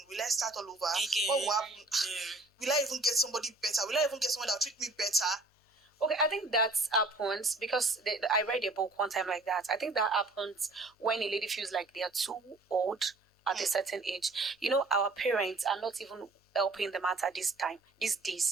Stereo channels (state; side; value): quieter; left; 3.0 dB